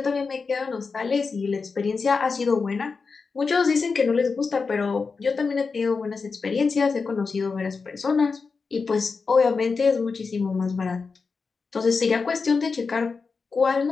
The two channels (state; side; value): quieter; right; 4.8 dB